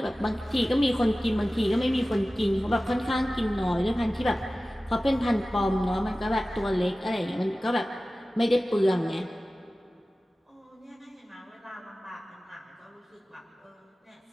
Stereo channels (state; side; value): normal; both; correlation 0.96